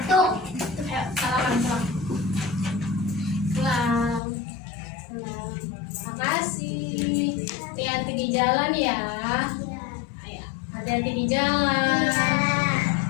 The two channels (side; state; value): right; drops out; at 4.2 s